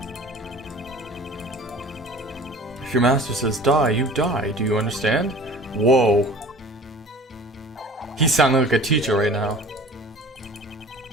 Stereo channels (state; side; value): normal; both; correlation 0.44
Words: If your master says die, you die. Do you understand? Whoa. He's sounding like a teacher right now.